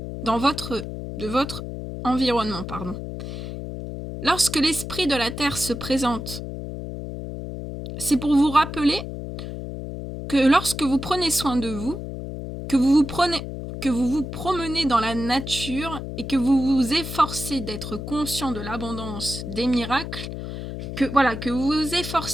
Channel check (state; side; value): noise; left; hum, 7 dB below the sound